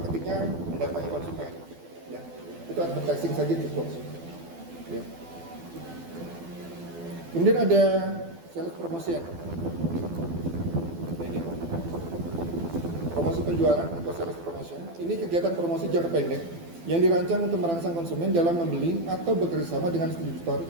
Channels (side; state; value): left; late; 12 ms